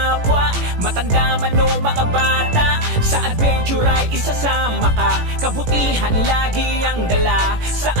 matanda man o mga bata. Sa adventure ay isasama ka, kabutihan lagi ang dala.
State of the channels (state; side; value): late; left; 18 ms